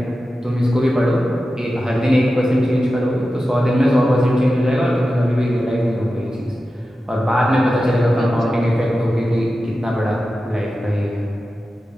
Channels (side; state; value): both; normal; correlation 0.93